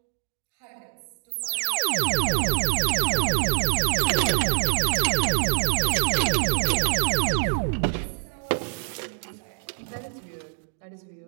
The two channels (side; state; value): left; silent; digital silence